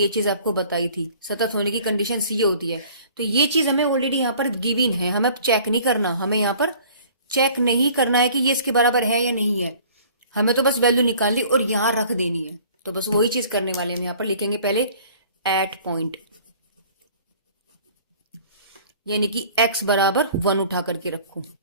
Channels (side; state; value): both; inverted; correlation -0.51